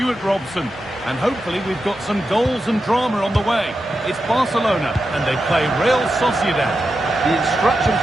Robson. And hopefully we've got some goals and drama on the way. It's Barcelona, and they play Real Sociedad. The instructions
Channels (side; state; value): both; normal; correlation 0.89